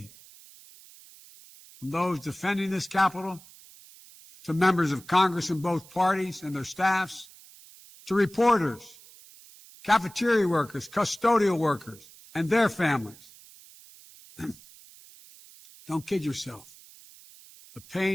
from those defending this Capitol, to members of Congress in both parties and their staffs, to reporters, cafeteria workers, custodial workers, and their families. Don't kid yourself. The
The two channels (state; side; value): noise; right; hiss, 22 dB below the sound